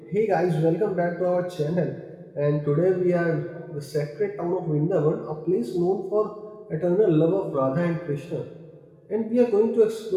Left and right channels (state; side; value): identical; both; correlation 1.00